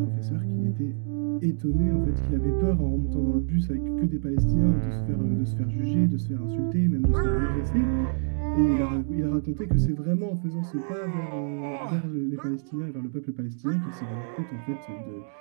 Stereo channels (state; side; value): silent; left; digital silence